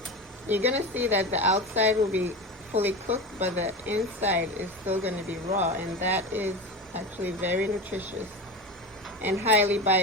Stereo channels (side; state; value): both; normal; correlation 0.25